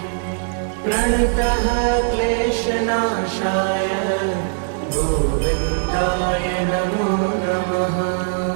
प्रणतः क्लेशनाशाय गोविन्दाय नमो नमः।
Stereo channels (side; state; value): left; silent; digital silence